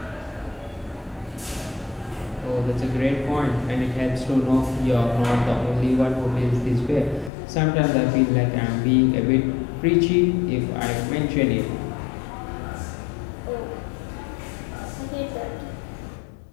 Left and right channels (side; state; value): right; drops out; at 7.3 s